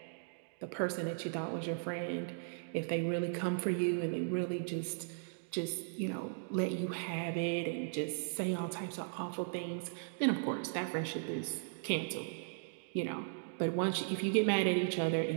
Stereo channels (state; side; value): silent; left; digital silence